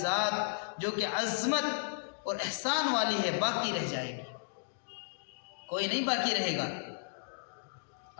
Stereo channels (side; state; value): right; silent; digital silence